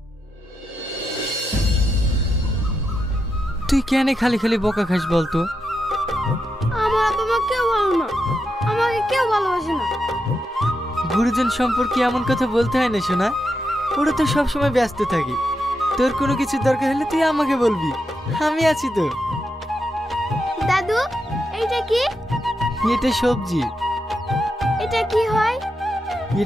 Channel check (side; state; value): both; normal; correlation 0.85